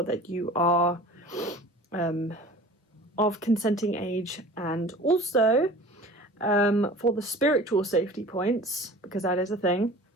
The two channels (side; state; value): both; normal; correlation 0.42